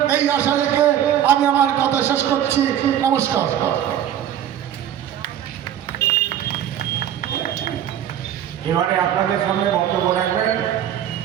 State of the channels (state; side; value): quieter; left; 10.6 dB